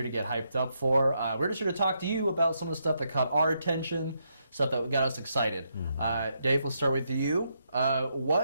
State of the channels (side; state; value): both; inverted; correlation -0.79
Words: to get hyped up for. We're just here to talk to you about some of the stuff that caught our attention, stuff that got us excited. Dave, we'll start with you.